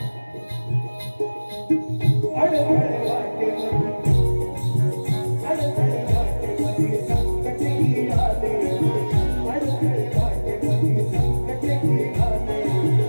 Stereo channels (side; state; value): both; inverted; correlation -1.00